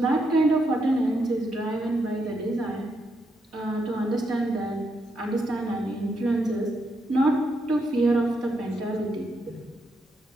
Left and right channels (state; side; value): normal; both; correlation 0.80